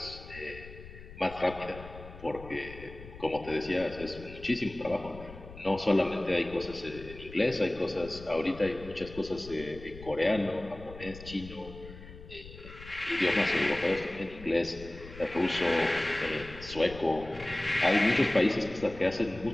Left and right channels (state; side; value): noise; left; rumble, 15 dB below the sound